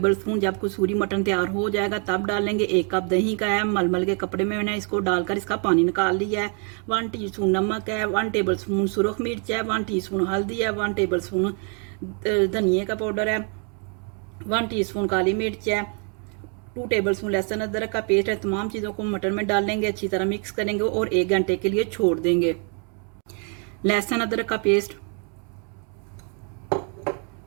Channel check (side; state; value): left; quieter; 39.3 dB